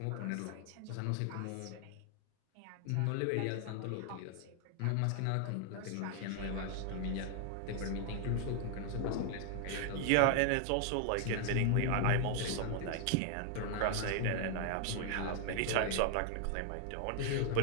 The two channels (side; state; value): both; different; correlation 0.00